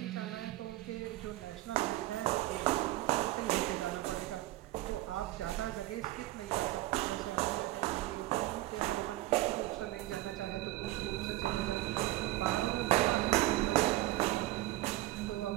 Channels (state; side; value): quieter; left; 17.5 dB